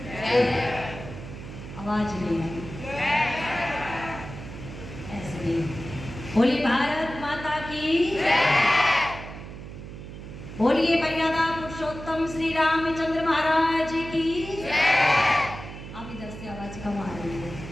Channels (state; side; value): noise; right; hum, 12 dB below the sound